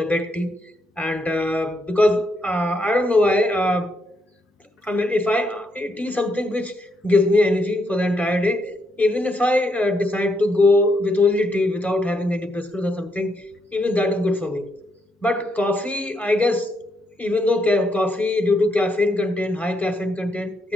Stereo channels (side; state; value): both; normal; correlation 0.78